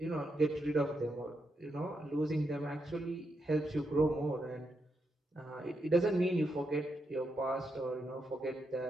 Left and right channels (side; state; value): both; normal; correlation 0.83